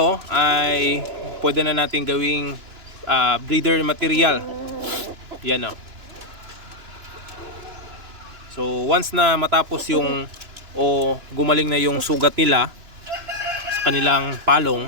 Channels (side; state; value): left; late; 2.9 ms